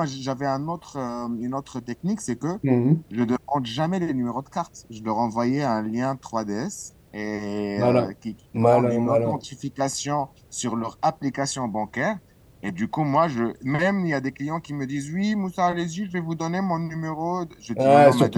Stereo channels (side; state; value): both; identical; correlation 1.00